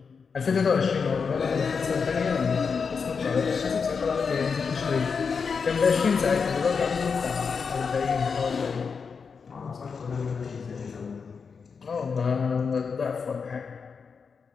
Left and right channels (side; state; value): right; quieter; 5.6 dB